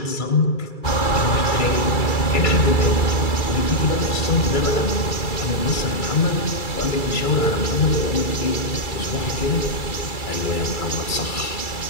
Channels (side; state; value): right; late; 2.3 ms